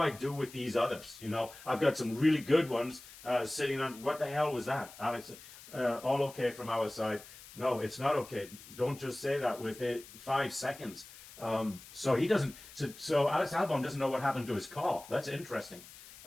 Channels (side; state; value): left; noise; hiss, 18 dB below the sound